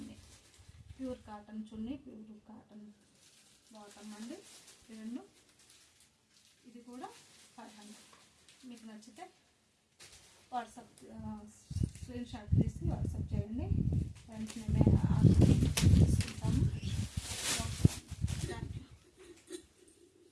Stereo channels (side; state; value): both; identical; correlation 1.00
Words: ప్యూర్ కాటన్ చున్నీ, ప్యూర్ కాటన్ బాటమ్ అండి. ఈ రెండు. ఇది కూడా 500. మీకు నచ్చితే వాట్సాప్ స్క్రీన్ షాట్ తీసి వాట్సాప్ చేయండి. వెంటనే